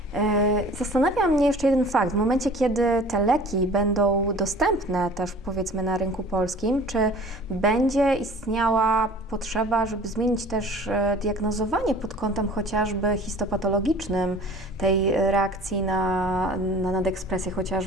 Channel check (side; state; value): both; normal; correlation 0.45